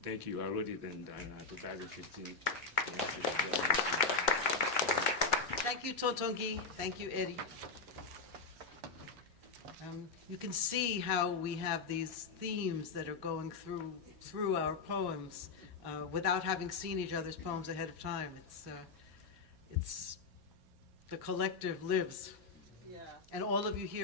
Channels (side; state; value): right; quieter; 4.6 dB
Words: Thank you. I wrote it in 2015. Thank you, Totongi. Thank you, Eddie. You can see how we have these themes that are going through our poems without having seen each other's poems ahead of time. It's the collective lives, Yeah. and all of you